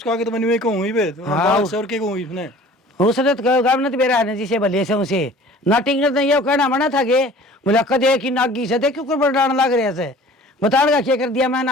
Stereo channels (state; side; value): normal; both; correlation 0.47